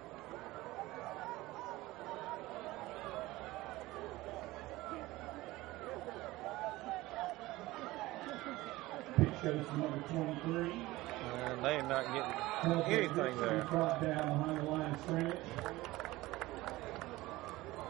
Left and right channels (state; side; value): quieter; left; 18.8 dB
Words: Pitch goes to number 23. And they are not getting anything there. Brought down behind the line of scrimmage.